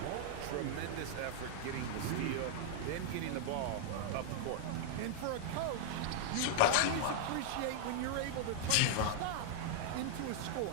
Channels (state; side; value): different; both; correlation -0.01